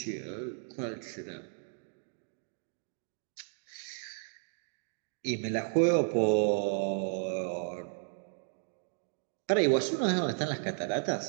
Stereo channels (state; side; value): silent; left; 55 dB below the other